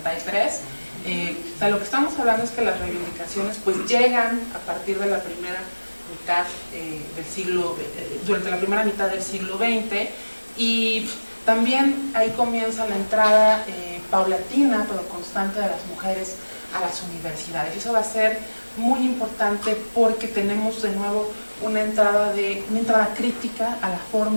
O sea, lo que estamos hablando es que las reivindicaciones pues llegan a partir de la primera mitad del siglo, durante la primera mitad del siglo XX, y también ahí comienza la entrada paulatina pero constante de las mujeres a las universidades. Y eso va a ser muy importante porque tenemos de nuevo una entrada crítica a la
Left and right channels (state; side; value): inverted; both; correlation -1.00